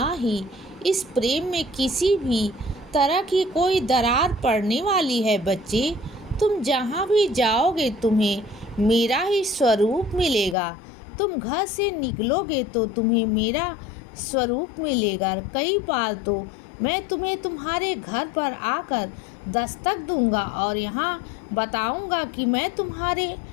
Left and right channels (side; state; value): right; drops out; at 10.6 s